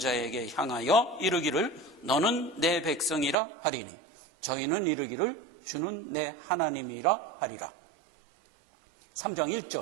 향하여 이르기를 너는 내 백성이라 하리니 저희는 이르기를 주는 내 하나님이라 하리라. 3장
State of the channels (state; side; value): drops out; left; at 3.4 s